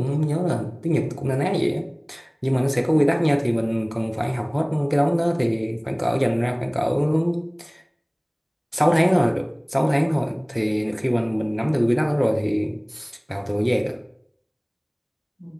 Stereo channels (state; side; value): identical; both; correlation 1.00